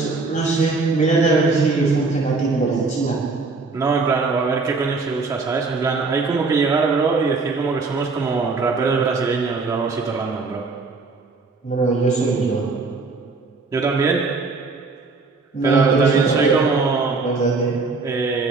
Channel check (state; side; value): quieter; left; 4.0 dB